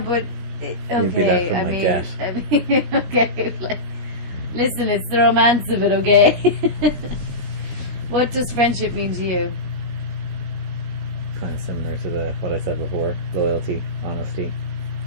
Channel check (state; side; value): late; left; 17 ms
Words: You'd be left with my debt. I mean, okay. Like, listen, it's the romance of it, okay? What does friendship mean to you? Kind of similar to what I said before: loyalty, honesty,